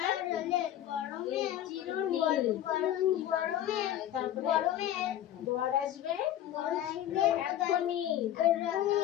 চিরুনি তারপরে বর আসবে এখনই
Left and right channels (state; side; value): quieter; right; 11.9 dB